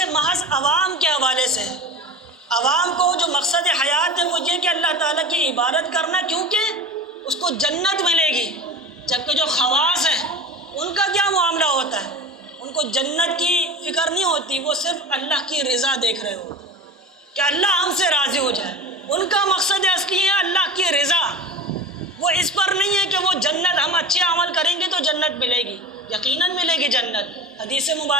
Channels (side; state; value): both; normal; correlation 0.32